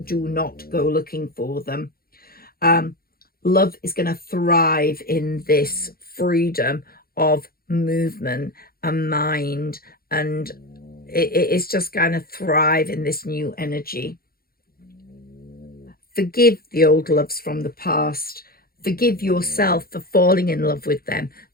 do not go looking for them. Love is going to thrive in this freedom of movement and mind, and it's just going to thrive in this new energy. Forgive the old loves from the past. Forgive yourself for falling in love with them.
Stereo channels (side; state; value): right; late; 0.44 ms